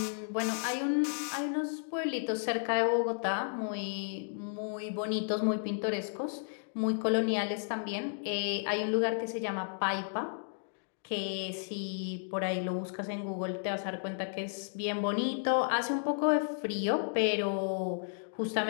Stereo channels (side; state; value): right; silent; digital silence